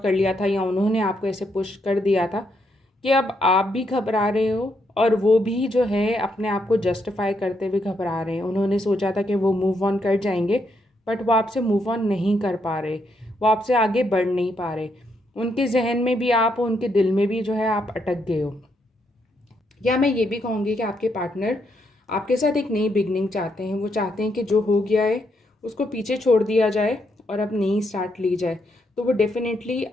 कर लिया था या उन्होंने आपको ऐसे पुश कर दिया था कि अब आप भी घबरा रहे हो और वो भी जो है अपने आप को जस्टिफाई करते हुए घबरा रहे हैं। उन्होंने सोचा था कि वो मूव ऑन कर जाएंगे, बट वो आपसे मूव ऑन नहीं कर पा रहे, वो आपसे आगे बढ़ नहीं पा रहे। उनके जहन में भी आप, उनके दिल में भी जो है आप अटक गए हो। या मैं ये भी कहूँगी कि आपके पार्टनर आपके साथ एक नई बिगनिंग चाहते हैं। वो चाहते हैं कि जो हो गया है उसको पीछे छोड़ दिया जाए और अब नई स्टार्ट ली जाए। तो वो डेफिनेटली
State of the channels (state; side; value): normal; both; correlation 0.77